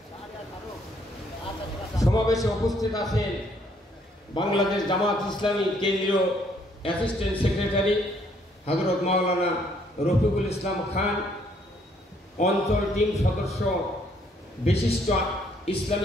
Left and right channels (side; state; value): both; normal; correlation 0.67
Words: সমাবেশে উপস্থিত আছেন বাংলাদেশ জামাত ইসলামী কেন্দ্রীয় অ্যাসিস্ট্যান্ট সেক্রেটারি হযরত মাওলানা রফিকুল ইসলাম খান, অঞ্চল টিম সদস্য বিশিষ্ট